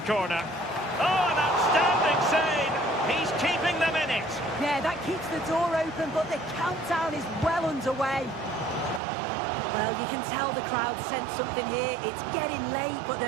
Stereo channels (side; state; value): left; drops out; at 9.0 s